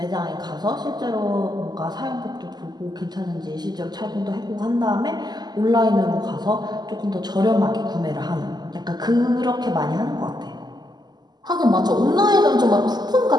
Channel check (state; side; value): late; left; 0.20 ms